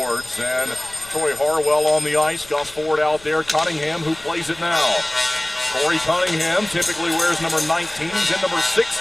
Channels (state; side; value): noise; left; rumble, 24 dB below the sound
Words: And Troy Harwell on the ice. Gus Ford out there. Cunningham, who plays it now. Corey Cunningham typically wears number 19. He's in number